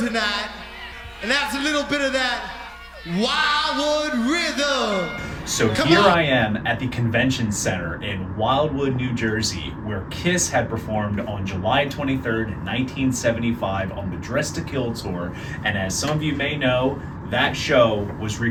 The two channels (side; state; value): both; identical; correlation 1.00